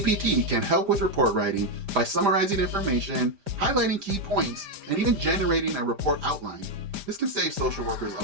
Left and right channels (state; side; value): late; left; 5.0 ms